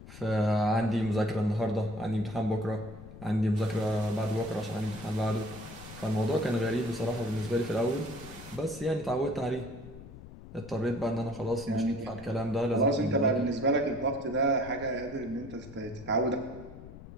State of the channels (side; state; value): left; noise; rumble, 15 dB below the sound